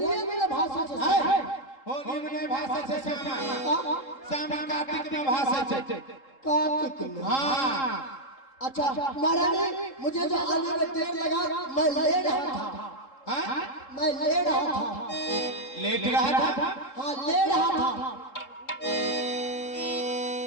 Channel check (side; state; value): right; late; 3.7 ms